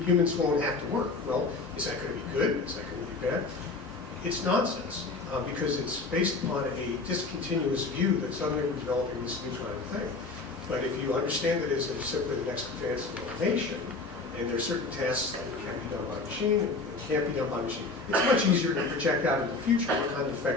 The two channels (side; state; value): right; quieter; 3.7 dB